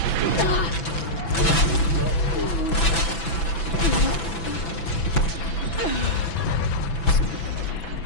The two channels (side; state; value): right; late; 6.0 ms